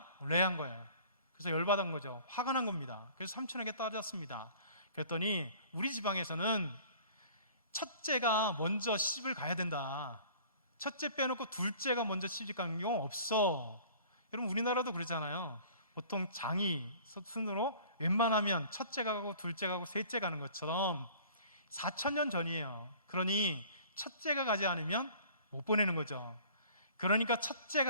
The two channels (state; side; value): inverted; both; correlation -0.49